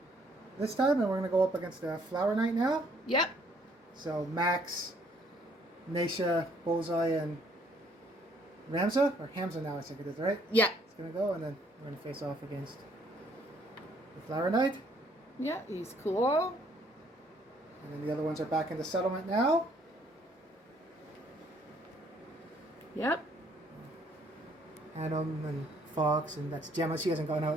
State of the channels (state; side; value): normal; both; correlation 0.65